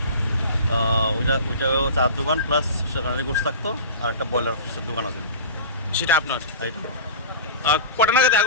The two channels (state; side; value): inverted; both; correlation -0.35